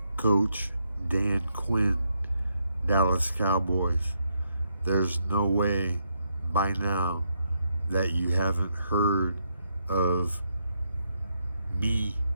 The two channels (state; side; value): inverted; both; correlation -0.78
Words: Coach Dan Quinn, Dallas Cowboys. There's no way by now that you haven't heard of me,